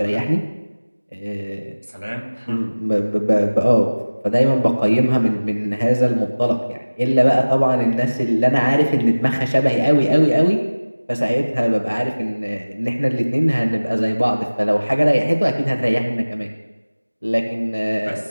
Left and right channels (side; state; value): both; inverted; correlation -1.00